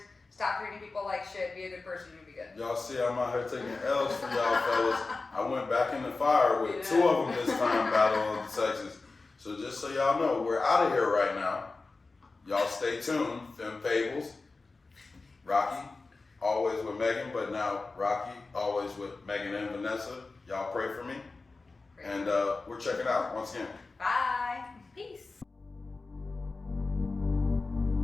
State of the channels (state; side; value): quieter; right; 3.7 dB